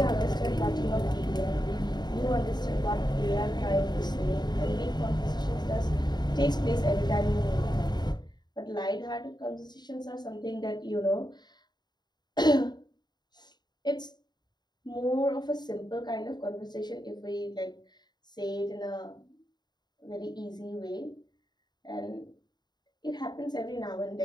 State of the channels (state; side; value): late; right; 0.20 ms